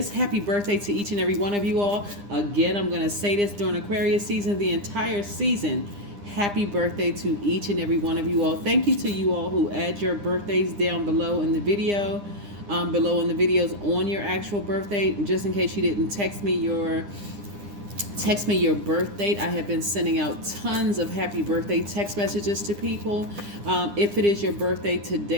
Happy birthday to each and every one of you all. Again, I'm going to say this during Aquarius season, the entire season. Happy birthday to each and every one of you all. Thank you to you all who add your birthdays down below in the video, below in the videos on your actual birthday. Just in case you didn't text me your birth date, I have been sending out tons of happy birthday text messages to people. If it is your birthday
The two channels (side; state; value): left; late; 9.9 ms